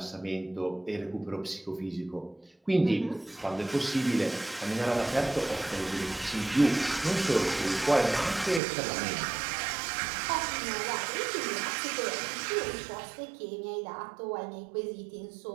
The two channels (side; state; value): left; drops out; at 8.6 s